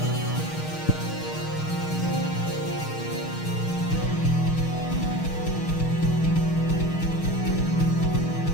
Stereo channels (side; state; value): right; late; 6.4 ms